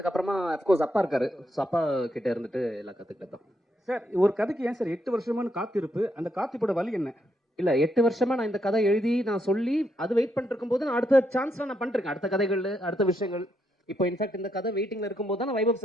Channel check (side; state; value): both; normal; correlation 0.78